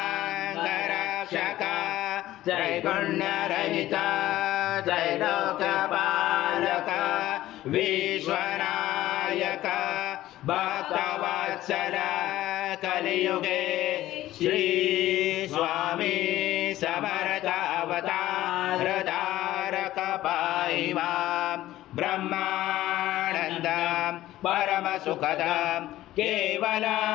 त्रैगुण्यरहित त्रैलोक्यपालक विश्वनायक भक्तवत्सल कलियुगे श्री स्वामी समर्थ अवतार धारक पाहि मां ब्रह्मानंद परम सुखद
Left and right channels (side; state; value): right; quieter; 15.0 dB